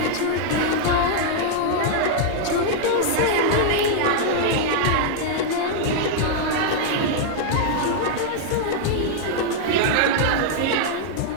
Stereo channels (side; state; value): both; different; correlation -0.01